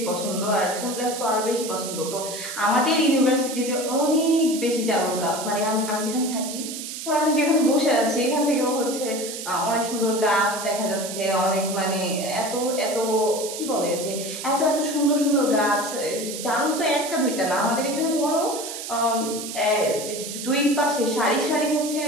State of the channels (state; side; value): noise; right; hiss, 8 dB below the sound